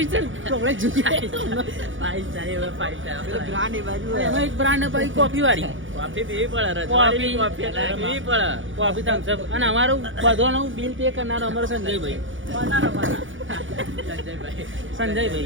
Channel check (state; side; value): late; left; 0.56 ms